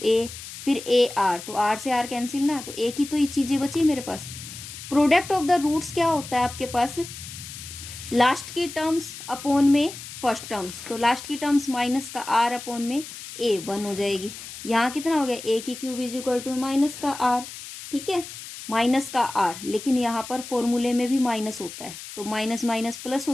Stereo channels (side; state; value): left; noise; hiss, 12 dB below the sound